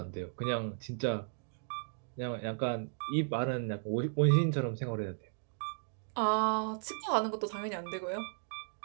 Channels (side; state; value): left; silent; digital silence